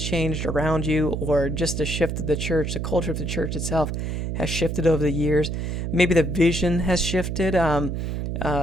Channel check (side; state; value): right; noise; hum, 2 dB below the sound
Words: changed around you, or just the shift of the church, the culture of the church itself has shifted over the years. Maybe the vision has shifted